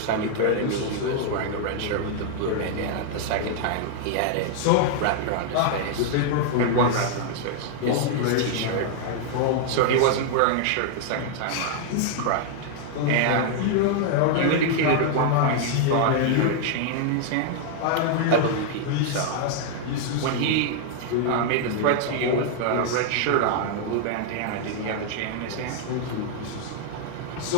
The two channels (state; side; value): different; both; correlation 0.00